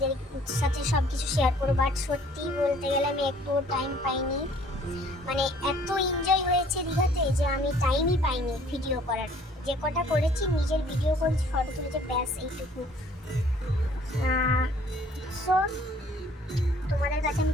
সাথে সব কিছু শেয়ার করবো, বাট সত্যি বলতে গেলে আমি একটু টাইম পাইনি। মানে এত এনজয় হয়েছে দীঘাতে যে আমি টাইমই পাইনি ভিডিও করার। যে কটা করেছি নিজের ভিডিও করেছি, ফটো তুলেছে, ব্যাস এইটুকু। সো তোমাদের কাছে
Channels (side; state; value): both; normal; correlation 0.57